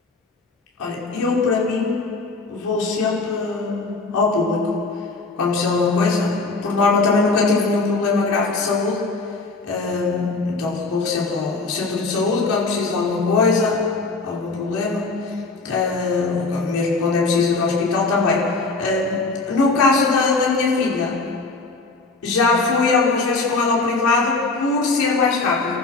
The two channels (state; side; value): quieter; right; 3.7 dB